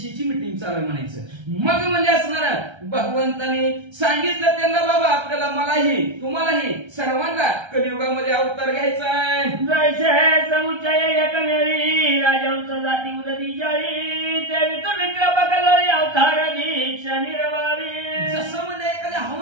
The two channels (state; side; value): late; left; 1.3 ms